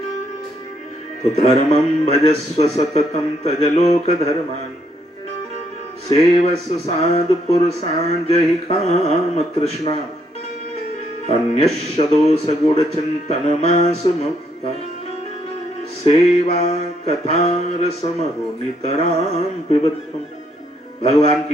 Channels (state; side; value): normal; both; correlation 0.72